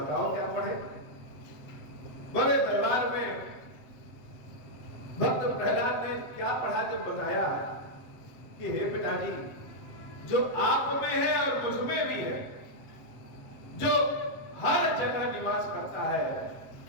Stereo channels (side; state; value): right; late; 7.7 ms